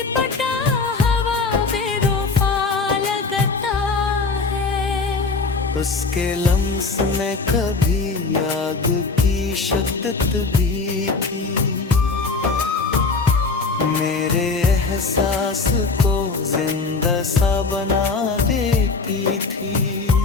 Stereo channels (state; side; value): quieter; right; 4.1 dB